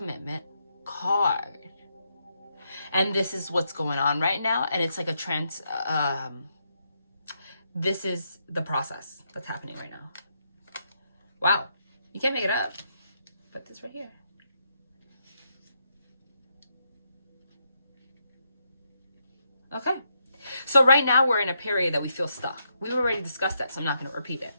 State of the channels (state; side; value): inverted; both; correlation -0.80